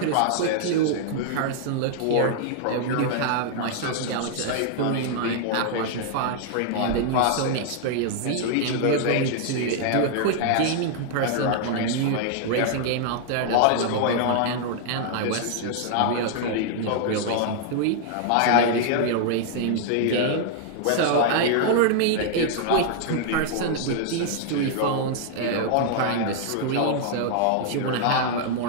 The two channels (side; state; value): both; different; correlation -0.01